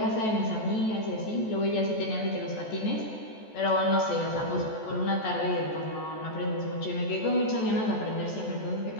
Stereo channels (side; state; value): right; late; 14 ms